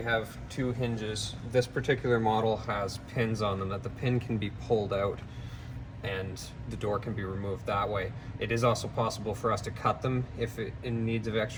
have two hinges. This particular model has pins on them that the pin can be pulled out and the door can be removed that way. It is also possible for us to cut them if it in needs of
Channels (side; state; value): both; identical; correlation 1.00